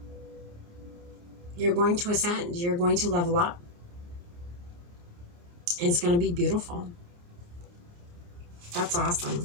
You're going to ascend. You're going to level up. And it's going to be beautiful. That's awesome.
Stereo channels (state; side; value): late; left; 29 ms